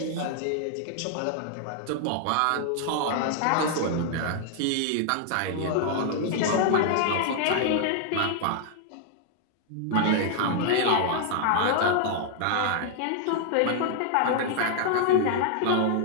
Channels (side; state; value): both; different; correlation 0.00